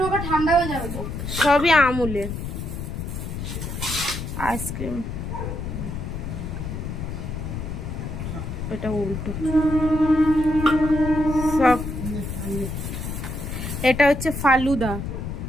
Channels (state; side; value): noise; left; rumble, 5 dB below the sound